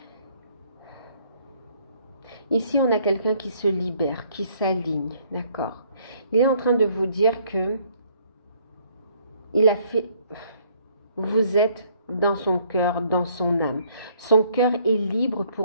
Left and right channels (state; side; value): inverted; both; correlation -0.64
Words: Ici, on a quelqu'un qui se libère, qui s'aligne, d'accord? Il est en train de vous dire que il a fait... Vous êtes dans son cœur, dans son âme. Son cœur est libre